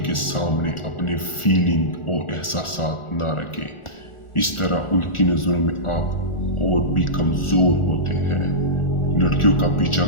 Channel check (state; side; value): late; right; 1.4 ms